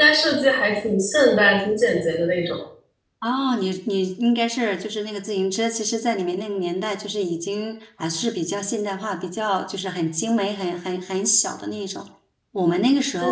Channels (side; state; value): both; identical; correlation 1.00